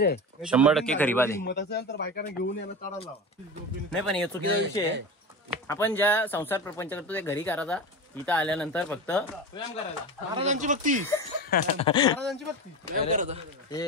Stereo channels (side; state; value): both; normal; correlation 0.26